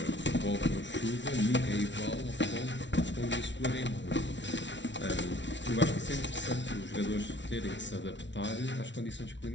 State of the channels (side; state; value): right; late; 0.53 ms